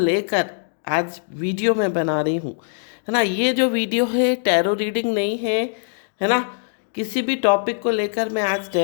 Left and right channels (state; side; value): silent; right; digital silence